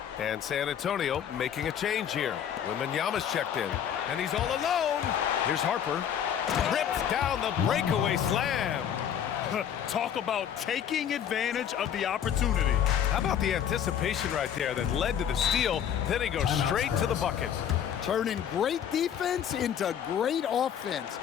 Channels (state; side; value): quieter; right; 9.1 dB